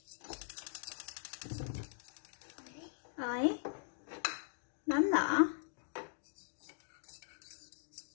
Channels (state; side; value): silent; right; digital silence